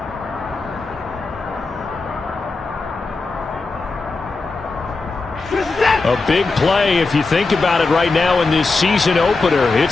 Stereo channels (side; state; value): right; quieter; 3.8 dB